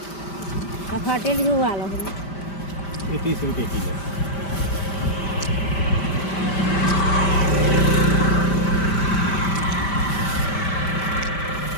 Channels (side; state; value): right; late; 5.1 ms